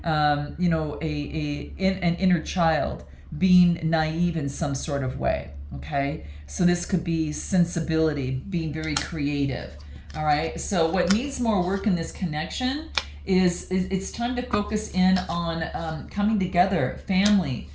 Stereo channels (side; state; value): both; identical; correlation 1.00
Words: an inner child being naive in some sort of way. Okay, so this could be sensibility, being very creative. All right. So what needs more work in this connection is it's time to focus in on coming together, family.